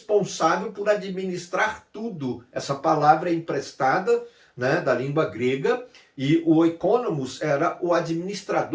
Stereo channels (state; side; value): identical; both; correlation 1.00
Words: por administrar tudo. Essa palavra é emprestada, né, da língua grega, e o oikonomos era o